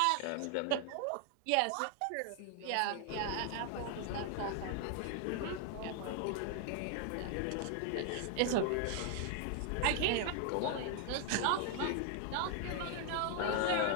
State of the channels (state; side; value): different; both; correlation 0.00